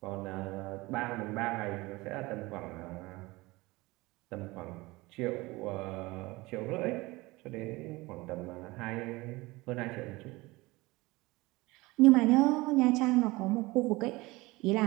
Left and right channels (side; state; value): left; quieter; 21.6 dB